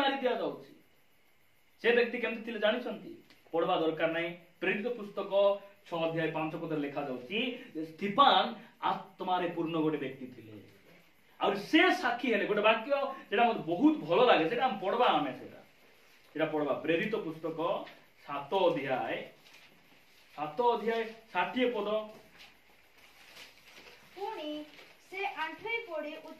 दिया जाउची से व्यक्ति केमति थिले जानि छंती पढवा दरकार नै प्रेरित पुस्तक 6 अध्याय 5 पद लिखा जाउची स्टीफान आत्मारे पूर्ण गोटे व्यक्ति थिले और से साक्षी हेले गोटे वाक्य जेडा मते बहुत भलो लागे सेटा हम पढवा आमे सेटा पढवा प्रेरित पुस्तक 7 अध्याय 60 पद पुणी से आंठई पड़ी उच्च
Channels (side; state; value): both; identical; correlation 1.00